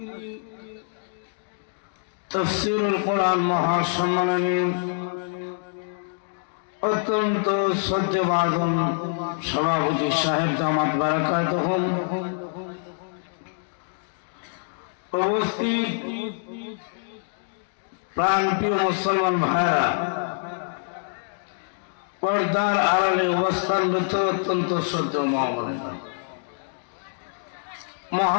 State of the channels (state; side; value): silent; right; digital silence